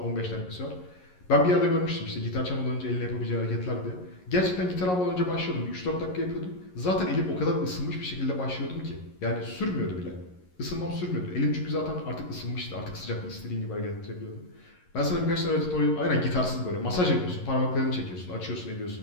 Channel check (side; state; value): right; late; 11 ms